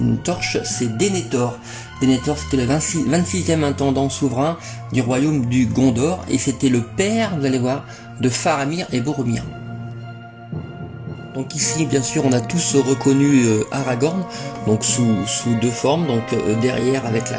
torche, c'est Denethor. Denethor c'était le 26e intendant souverain du royaume du Gondor et c'était le père, vous allez voir, de Faramir et Boromir. Donc ici bien sûr on a tous reconnu Aragorn donc sous 2 formes, donc derrière avec la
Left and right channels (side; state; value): both; identical; correlation 1.00